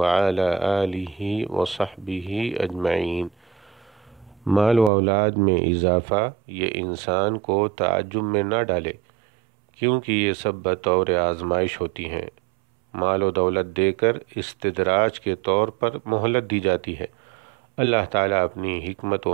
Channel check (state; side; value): drops out; left; at 4.9 s